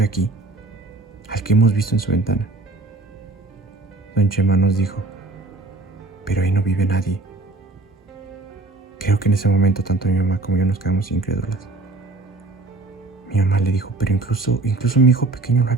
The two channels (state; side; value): quieter; left; 3.2 dB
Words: aquí, al que hemos visto en su ventana. Don Chema nos dijo: pero ahí no vive nadie. Creo que en ese momento tanto mi mamá como yo nos quedamos incrédulas. Mi mamá le dijo: pero incluso mi hijo pequeño lo ha